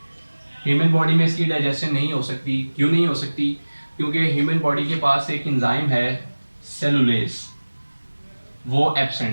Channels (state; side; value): inverted; both; correlation -1.00